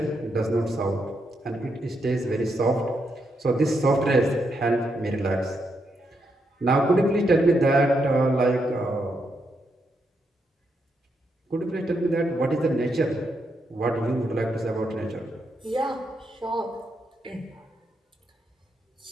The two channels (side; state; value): both; normal; correlation 0.81